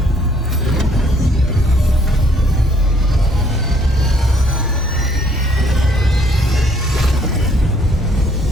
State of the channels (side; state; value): both; normal; correlation 0.64